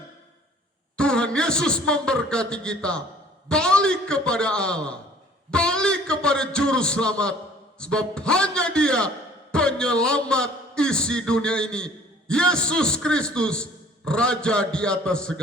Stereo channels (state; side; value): normal; both; correlation 0.53